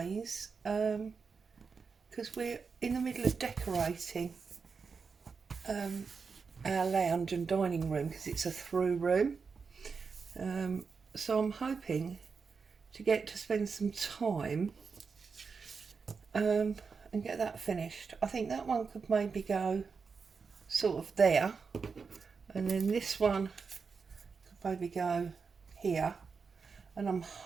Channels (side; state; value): left; quieter; 5.2 dB